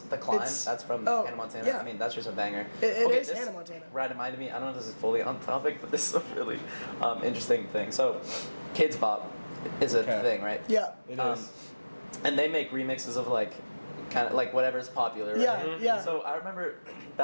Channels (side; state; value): both; inverted; correlation -1.00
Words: Climb. It's- That's from oh, Hannah Montana. yeah. I mean, that's just a banger. It is this Hannah Montana. Reminded me. I don't know if this is fully on topic, but this is a really interesting thing. So, Kids Bop is a Okay. thing, right? Yeah. It Um, is. And they make remixes of like, kind of like whatever's popular. Right? Yeah, yeah. So I remember